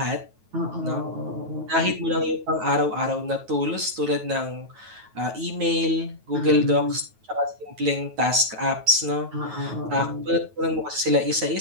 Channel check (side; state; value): left; late; 9.3 ms